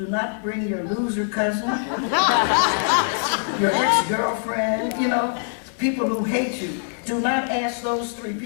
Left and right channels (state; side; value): silent; right; digital silence